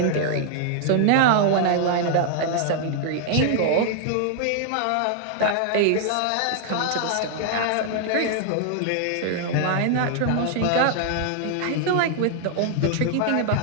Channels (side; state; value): both; different; correlation 0.00